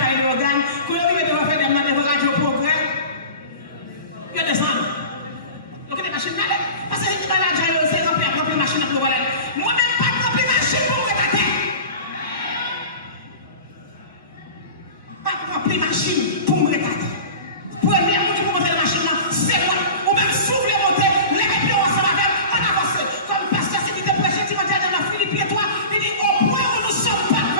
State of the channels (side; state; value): both; inverted; correlation -0.35